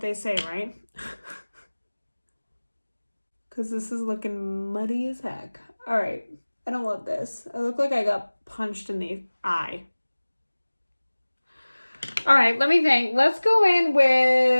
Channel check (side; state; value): both; inverted; correlation -1.00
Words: say, right? Because this is looking muddy as heck. All right. I don't love this. I look like I got punched in the eye. All right, let me think. Let's go in